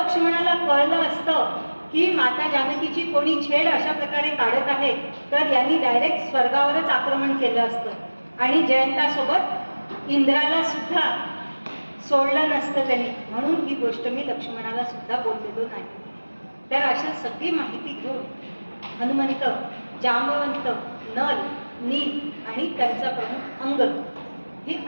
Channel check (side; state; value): both; inverted; correlation -1.00